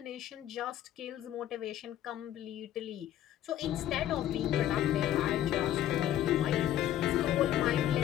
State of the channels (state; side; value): quieter; right; 12.1 dB